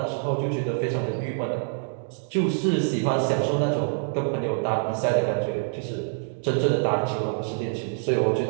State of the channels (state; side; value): silent; left; digital silence